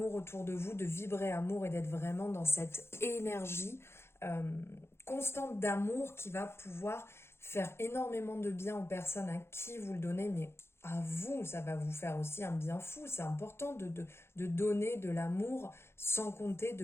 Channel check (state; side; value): late; right; 0.12 ms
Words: autour de vous, de vibrer amour et d'être vraiment dans cette énergie constante d'amour qui va pouvoir faire énormément de bien aux personnes à qui vous le donnez, mais à vous, ça va vous faire aussi un bien fou. C'est important de donner de l'amour sans compter